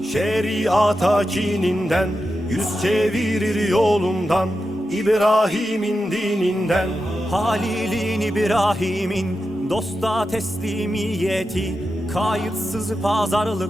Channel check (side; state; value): both; normal; correlation 0.90